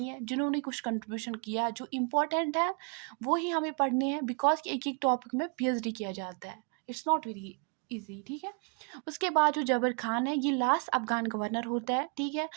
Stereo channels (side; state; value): left; quieter; 36.7 dB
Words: है, जिन्होंने कुछ कंट्रीब्यूशन किया, जो इम्पोर्टेंट है वो ही हमें पढ़ने हैं, बिकॉज एक एक टॉपिक में पीएचडी किया जाता है, इट्स नॉट वेरी इजी, ठीक है। उसके बाद जो जबर खान है ये लास्ट अफगान गवर्नर होता है, ठीक है।